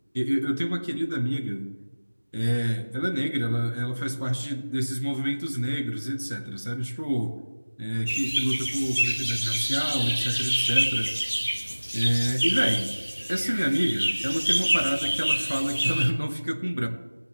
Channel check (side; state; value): both; inverted; correlation -1.00